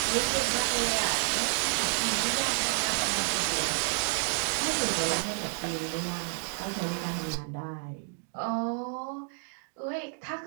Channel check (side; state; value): left; silent; 58 dB below the other